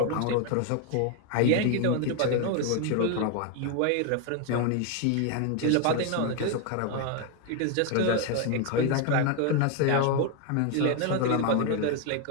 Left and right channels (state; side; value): different; both; correlation 0.01